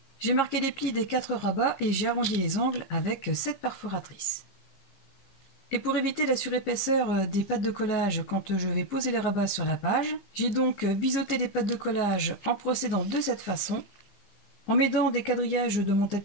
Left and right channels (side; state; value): right; late; 15 ms